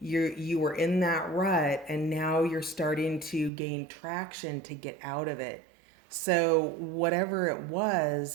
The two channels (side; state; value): left; drops out; at 3.5 s